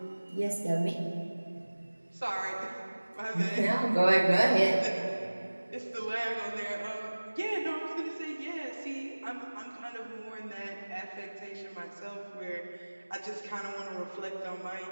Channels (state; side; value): inverted; both; correlation -1.00